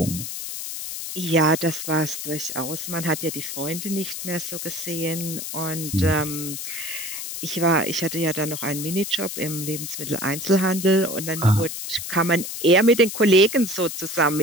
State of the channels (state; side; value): noise; left; hiss, 7 dB below the sound